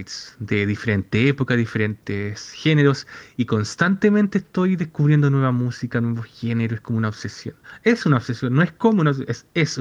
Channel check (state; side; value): identical; both; correlation 1.00